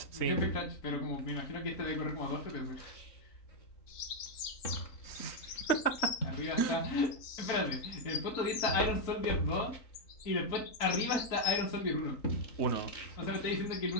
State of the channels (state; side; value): late; right; 3.9 ms